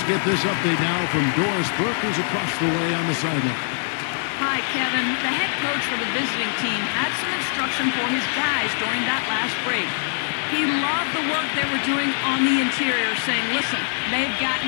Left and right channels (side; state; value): right; silent; digital silence